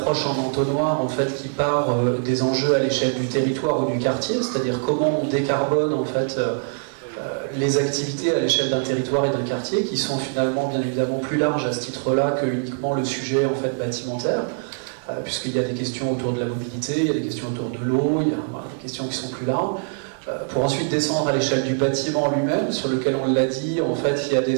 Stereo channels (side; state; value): left; silent; 59 dB below the other